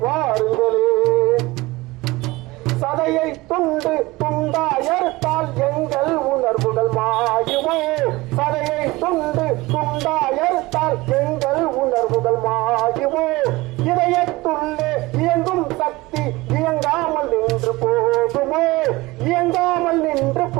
வாருங்களேன். சதையை துண்டு துண்டாயறுத்தால் எங்கள் உணர்வுகள் மாயுமோ, சதையை துண்டு துண்டாயறுத்தால் எங்கள் உணர்வுகள் மாயுமோ. இதயத்துள்ளே இயங்கும் சக்தி இயங்காமல் நின்று போகுமோ, இயங்காமல் நின்று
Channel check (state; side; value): quieter; left; 20.9 dB